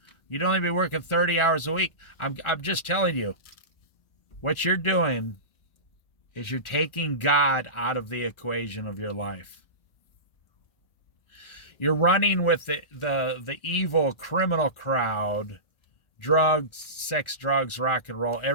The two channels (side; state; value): right; late; 1.4 ms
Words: You'd only be working 30 hours a week. I'm just telling you, what you're doing is you're taking God out of the equation of your life. You're running with the evil criminal crowd. Drugs, sex, drugs, rock and roll.